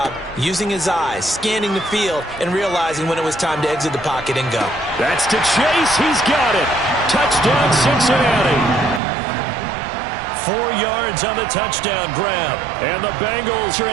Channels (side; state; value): left; drops out; at 9.0 s